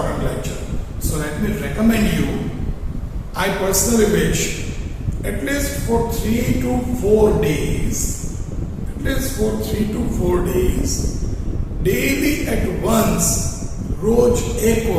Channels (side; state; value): both; identical; correlation 1.00